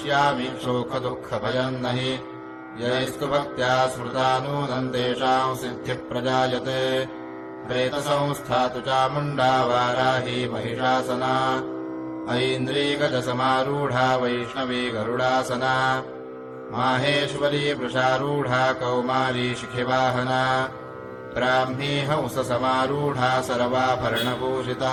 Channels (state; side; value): identical; both; correlation 1.00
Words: शोकदुःखभयम् न हि यैस्तु भक्त्या स्मृता नूनम् तेषाम् सिद्धिः प्रजायते। प्रेतसंस्था तु चामुण्डा वाराही महिषासना ऐन्द्रीगजसमारूढा वैष्णवी गरुडासना माहेश्वरी वृषारूढा कौमारी शिखिवाहना ब्राह्मी हंससमारूढा